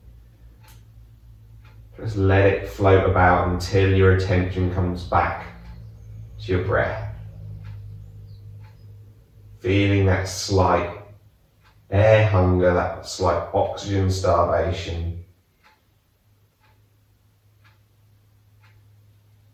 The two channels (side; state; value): both; identical; correlation 1.00